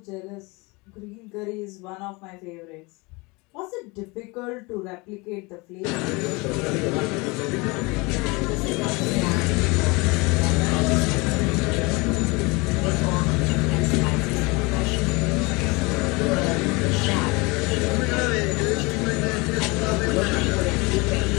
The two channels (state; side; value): quieter; right; 26.1 dB